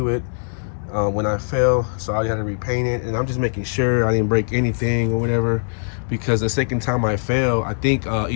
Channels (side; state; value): right; silent; digital silence